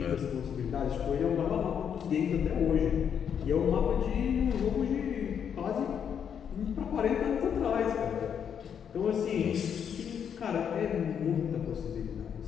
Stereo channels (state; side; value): quieter; right; 8.0 dB